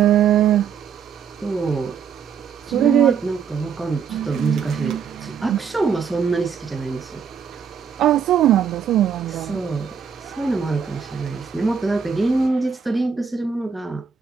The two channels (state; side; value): quieter; left; 6.8 dB